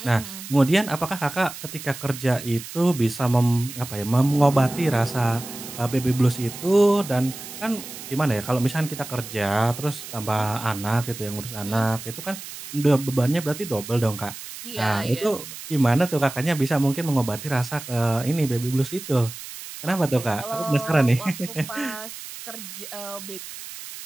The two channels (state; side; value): noise; right; hiss, 12 dB below the sound